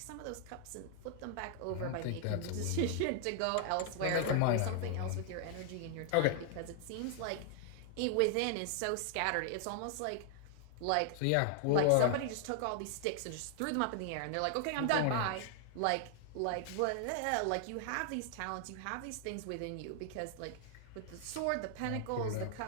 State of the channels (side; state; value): both; different; correlation 0.00